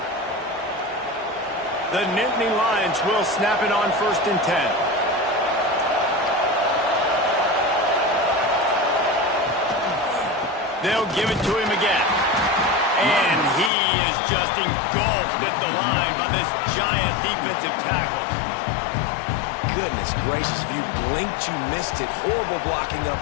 The Nittany Lions will snap it on 1st and 10. They'll give it to him again. And he is just engulfed at the line by this giant defensive tackle. Goodness gracious, if you blinked, you missed it. Horrible blocking up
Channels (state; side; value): drops out; right; at 13.7 s